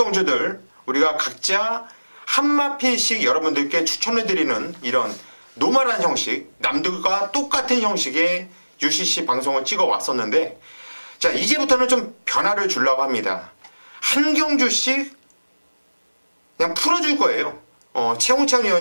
우리가 각자 한 마필씩 여러분들께 추천해드리는 이런 노멀한 형식, 남들과 똑같은 형식의 UCC 방송을 찍어 왔었는데, 자, 이제부터는 좀 변화를 주려고 합니다. 한 경주씩 그냥 풀어줄 거예요. 최홍찬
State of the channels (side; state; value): both; inverted; correlation -1.00